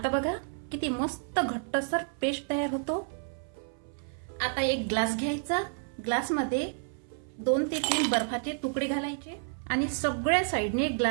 बघा किती मस्त घट्टसर पेस्ट तयार होतो। आता एक ग्लास घ्यायचा, ग्लासमध्ये 2 ते 3 बर्फाचे तुकडे घालायचे आणि सगळ्या साइडने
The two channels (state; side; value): silent; left; 58 dB below the other